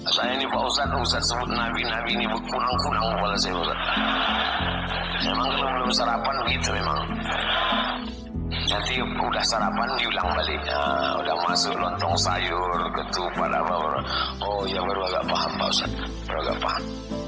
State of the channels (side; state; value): both; identical; correlation 1.00